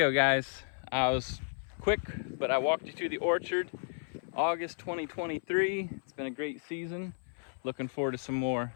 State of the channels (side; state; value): right; silent; 56 dB below the other